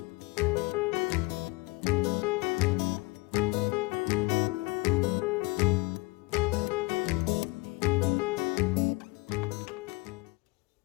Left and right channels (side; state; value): right; quieter; 24.8 dB